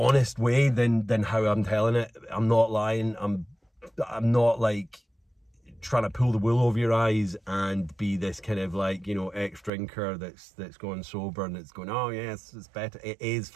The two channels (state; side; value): drops out; left; at 9.7 s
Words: way than how I'm telling it. I'm not lying. I'm not like trying to pull the wool over your eyes and be this kind of, like, you know, ex-drinker that's going sober and it's going, oh yes, it's better. It is